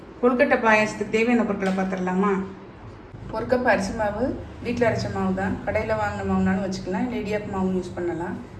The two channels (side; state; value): both; identical; correlation 1.00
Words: கொழுக்கட்டை பாயாசத்துக்கு தேவையான பொருட்களை பார்த்துடலாமா? ஒரு கப் அரிசி மாவு, வீட்டில் அரைச்ச மாவு தான். கடையில் வாங்கின மாவுனாலும் வச்சுக்கலாம், இல்லை இடியாப்பு மாவு யூஸ் பண்ணலாம்.